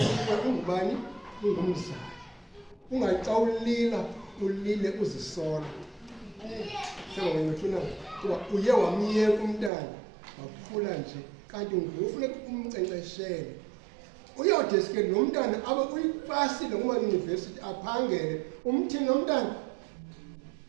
ungubani? Ungumzali. Ungathi xa ulila ulile uzisola. Sengawethuna kuba uye wamyeka umntana wakhula nje, kanti ngufuneka umnkcenkceshele. Uyawudeske lo mntana abe uyipasile kuma-yunivesithi aphangele, umthini lo mntana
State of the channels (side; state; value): left; drops out; at 9.7 s